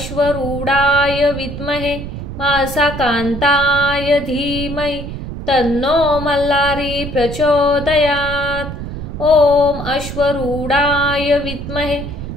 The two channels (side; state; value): right; noise; rumble, 8 dB below the sound